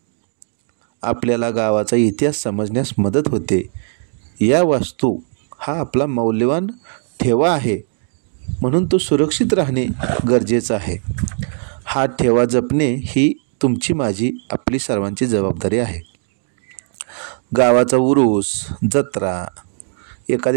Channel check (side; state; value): left; silent; digital silence